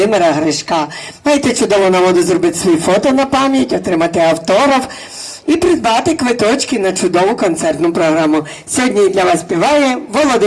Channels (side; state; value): both; identical; correlation 1.00